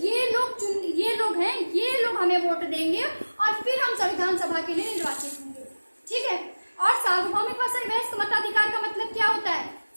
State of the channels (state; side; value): inverted; both; correlation -1.00